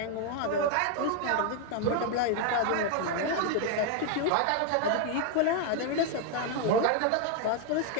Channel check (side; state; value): both; different; correlation 0.01